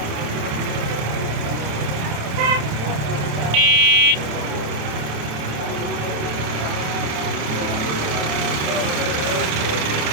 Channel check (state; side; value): late; left; 27 ms